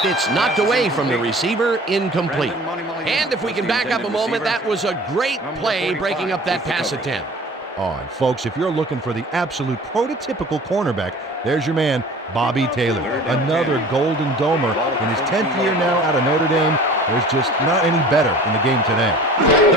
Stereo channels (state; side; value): normal; both; correlation 0.44